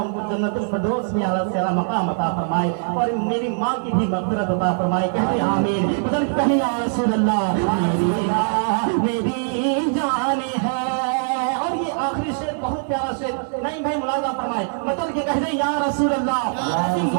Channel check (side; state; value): left; silent; digital silence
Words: ان کو جنت الفردوس میں اعلیٰ سے اعلیٰ مقام عطا فرمائے، اور میری ماں کی بھی مغفرت عطا فرمائے۔ کہتے آمین، مطلب کہیں یا رسول اللہ میری ماں میری جان ہے۔ اور یہ آخری شعر بہت پیارا شعر، نہیں بھائی ملاحظہ فرمائے، مطلب کہ کہتے یا رسول اللہ،